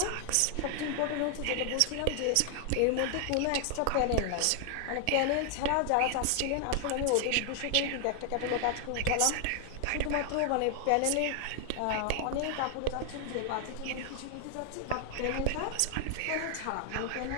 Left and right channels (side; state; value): both; different; correlation 0.00